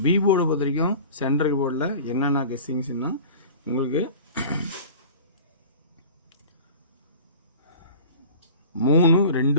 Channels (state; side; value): inverted; both; correlation -0.39